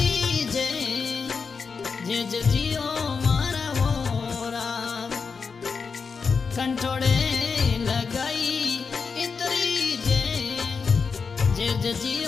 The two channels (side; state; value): right; quieter; 5.3 dB